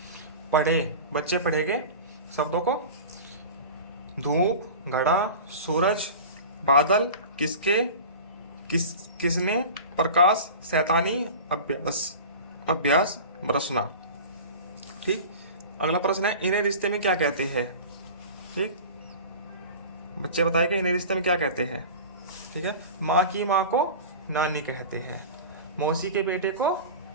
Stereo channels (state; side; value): inverted; both; correlation -0.34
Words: पढ़े, बच्चे पढ़ेंगे शब्दों को। धूप, घड़ा, सूरज, बादल, किसके, किसने, प्रकाश, शैतानी, अभ्यास, अभ्यास, बरसना। ठीक। अगला प्रश्न है, इन्हें रिश्ते में क्या कहते हैं। ठीक, बच्चे बताएंगे इन्हें रिश्ते में क्या कहते हैं। ठीक है। माँ की माँ को नानी कहते हैं, मौसी के बेटे को